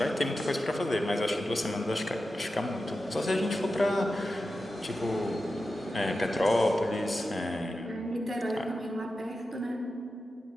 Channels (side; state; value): both; normal; correlation 0.92